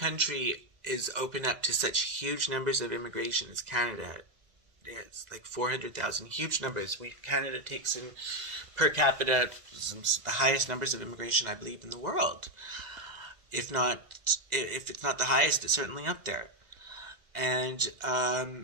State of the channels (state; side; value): late; left; 1.9 ms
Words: is open up to such huge numbers of immigration as Canada is, like 400,000, huge numbers. Canada takes in per capita the highest numbers of immigration, I believe, in the world. If it's not the highest, it's certainly up there. And